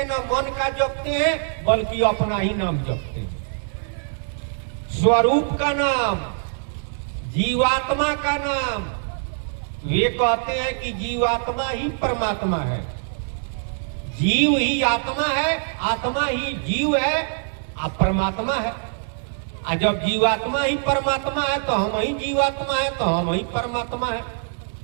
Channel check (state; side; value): silent; left; 63 dB below the other